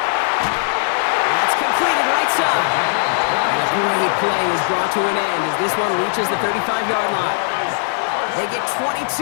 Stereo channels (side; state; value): right; silent; digital silence